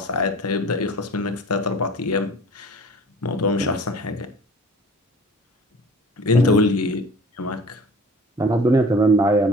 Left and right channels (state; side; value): normal; both; correlation 0.45